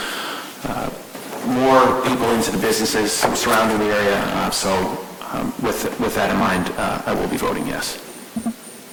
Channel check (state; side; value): identical; both; correlation 1.00